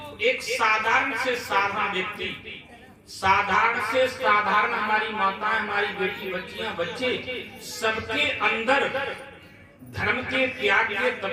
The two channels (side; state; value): both; identical; correlation 1.00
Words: एक साधारण से साधारण व्यक्ति, साधारण से साधारण हमारी माताएं, हमारी बेटी, बच्चियां, बच्चे, सबके अंदर धर्म के, त्याग के,